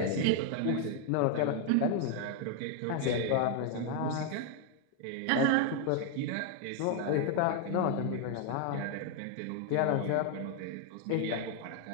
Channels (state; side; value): different; both; correlation 0.00